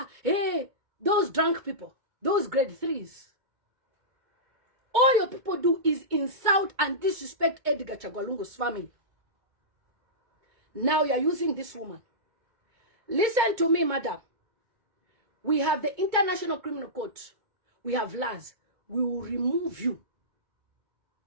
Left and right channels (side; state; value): left; late; 2.2 ms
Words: hey, those drunk people, those grade 3s. All your people do is insult and disrespect Edgar Chagwalungu's family. Now you're using this woman. Listen to me, madam. We have the International Criminal Court. We have laws. We will remove you